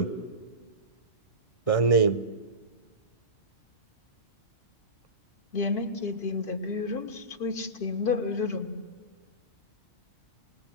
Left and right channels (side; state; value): right; late; 1.6 ms